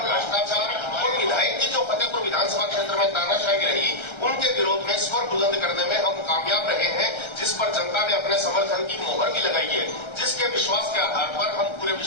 भ्रष्टाचार और विधायक की जो फतेहपुर विधानसभा क्षेत्र में तानाशाही रही उनके विरोध में स्वर बुलंद करने में हम कामयाब रहे हैं, जिस पर जनता ने अपने समर्थन की मोहर भी लगाई है, जिसके विश्वास के आधार पर हम पूरे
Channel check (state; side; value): late; right; 1.3 ms